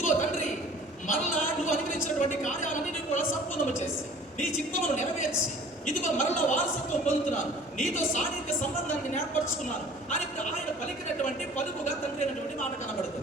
తండ్రి, మరలా నువ్వు అనుగ్రహించినటువంటి కార్యాలన్నీ కూడా సంపూర్ణము చేసి నీ చిత్తమును నెరవేర్చి ఇదిగో మరలా వారసత్వం పొందుతున్నాను, నీతో సాన్నిహిత్య సంబంధాన్ని ఏర్పరచుకున్నాను అని ఆయన పలికినటువంటి పలుకుగా తండ్రి అయినటువంటి మాట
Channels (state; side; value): normal; both; correlation 0.49